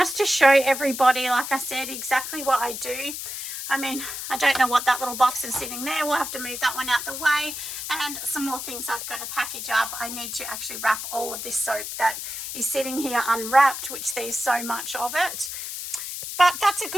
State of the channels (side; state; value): left; noise; hiss, 6 dB below the sound